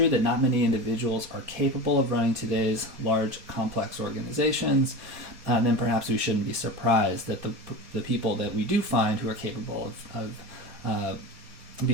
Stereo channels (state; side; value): late; left; 4.1 ms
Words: that not many individuals are capable of running today's large, complex organizations, then perhaps we shouldn't be surprised that the people that we do find who are capable of